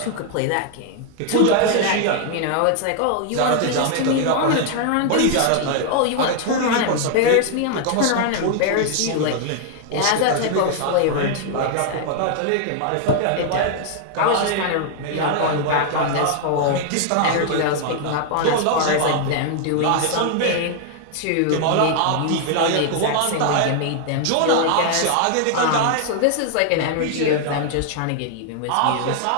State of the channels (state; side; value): different; both; correlation 0.00